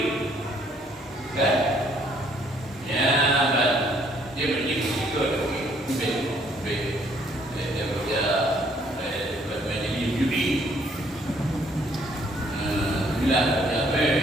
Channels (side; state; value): both; normal; correlation 0.64